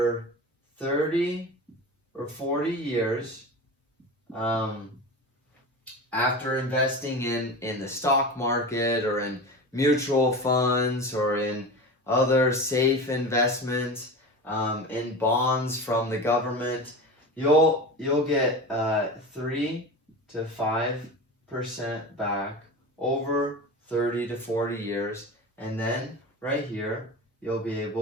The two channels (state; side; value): normal; both; correlation 0.29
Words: 30 or 40 years, after investing in the stock market or in mutual funds or in other safe investments, in bonds from the government, you'll get 3 to 5% back over 30 to 40 years, and then right here you'll be